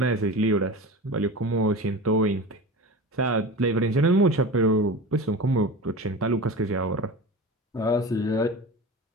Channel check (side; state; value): both; normal; correlation 0.31